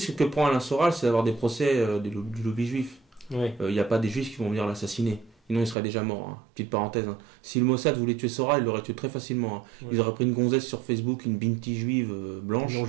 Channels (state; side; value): drops out; left; at 5.8 s